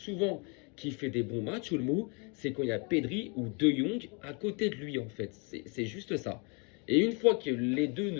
qu'il fait des bons matchs, Olmo, c'est quand il y a Pedri ou De Jong à côté de lui, en fait. C'est juste ça. Et une fois que les deux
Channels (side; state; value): right; quieter; 33.6 dB